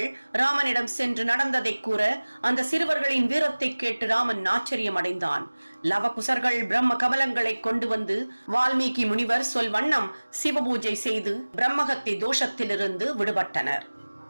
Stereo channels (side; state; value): both; inverted; correlation -1.00